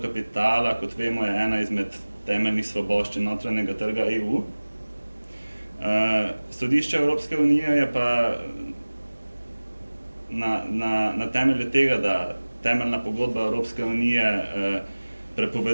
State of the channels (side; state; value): both; inverted; correlation -1.00